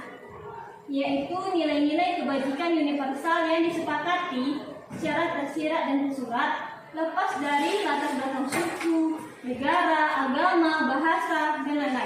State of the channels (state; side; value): identical; both; correlation 1.00